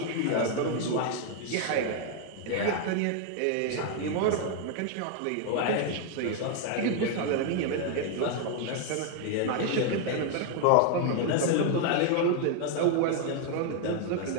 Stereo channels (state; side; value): different; both; correlation 0.00